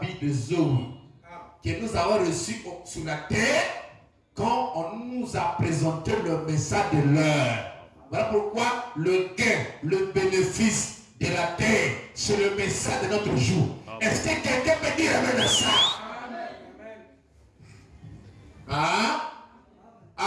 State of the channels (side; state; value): both; identical; correlation 1.00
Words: vie de Zoé. Que nous avons reçu sur la terre quand on nous a présenté le message de l'heure. Voilà pourquoi le gain, le bénéfice de la terre, c'est le message de notre jour. Est-ce que quelqu'un peut dire amen à ça? Hein?